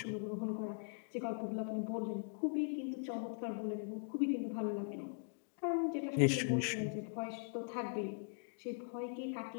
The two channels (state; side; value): silent; right; digital silence